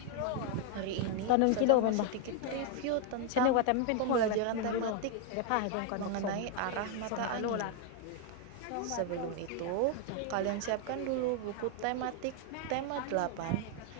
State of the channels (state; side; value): different; both; correlation 0.00